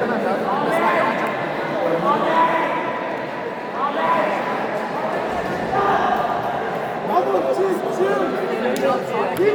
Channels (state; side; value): identical; both; correlation 1.00